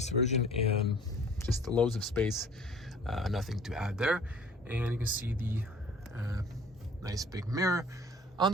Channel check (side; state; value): both; normal; correlation 0.50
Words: version, and just loads of space, nothing to add there. And you can see the nice big mirror. On